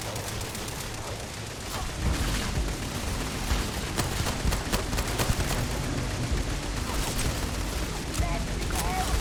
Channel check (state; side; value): identical; both; correlation 1.00